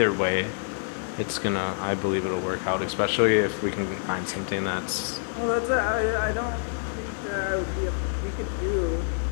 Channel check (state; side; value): silent; right; digital silence